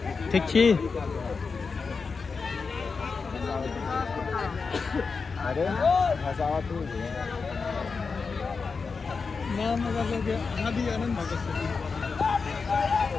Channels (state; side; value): quieter; right; 4.9 dB